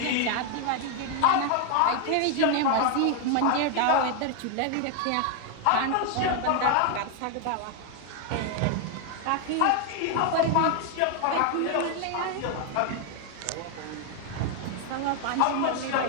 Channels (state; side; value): different; both; correlation 0.01